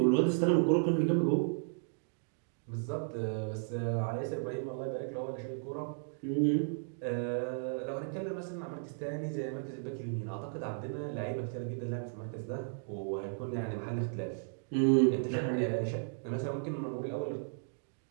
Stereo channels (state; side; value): silent; left; digital silence